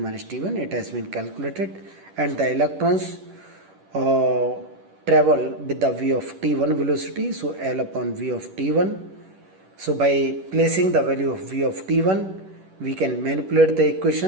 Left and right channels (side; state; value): left; late; 10 ms